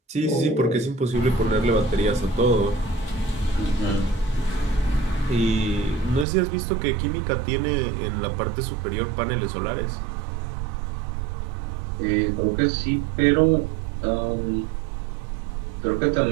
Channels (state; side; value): drops out; left; at 6.2 s